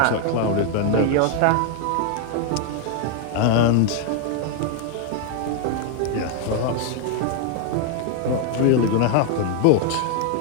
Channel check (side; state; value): both; different; correlation 0.00